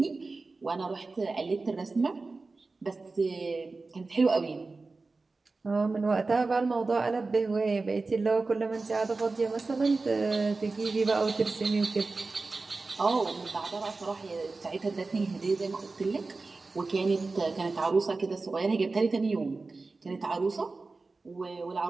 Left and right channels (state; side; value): quieter; left; 3.7 dB